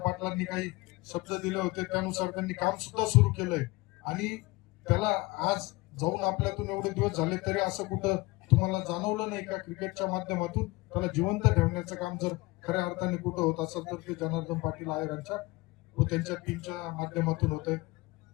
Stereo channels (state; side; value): quieter; right; 22.0 dB